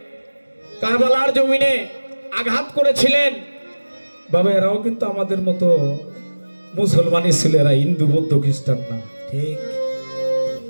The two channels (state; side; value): inverted; both; correlation -1.00